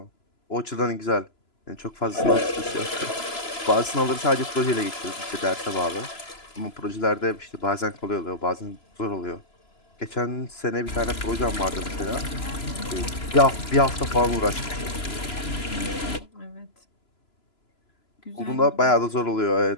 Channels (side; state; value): right; late; 3.0 ms